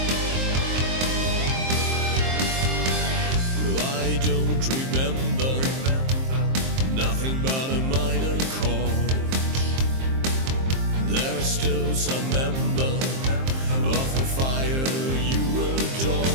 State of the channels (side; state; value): left; late; 23 ms